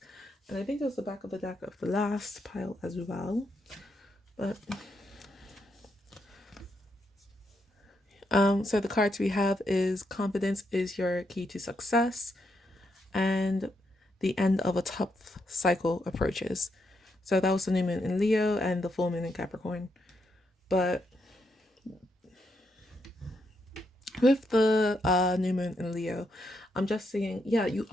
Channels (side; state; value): both; normal; correlation 0.80